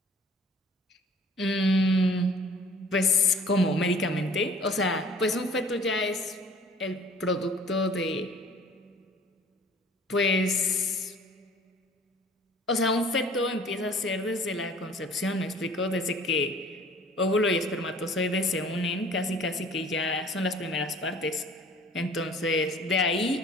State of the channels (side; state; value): both; normal; correlation 0.51